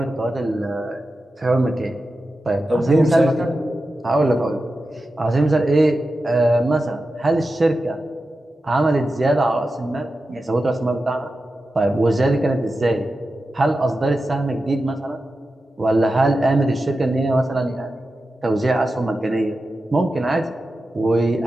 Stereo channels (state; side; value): normal; both; correlation 0.92